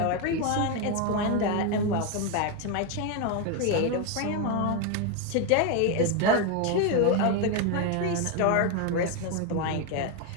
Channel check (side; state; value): both; different; correlation 0.02